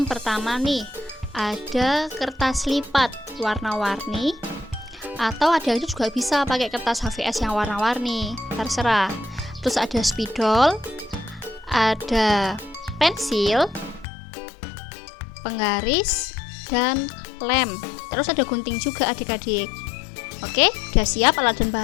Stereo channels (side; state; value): right; drops out; at 14.1 s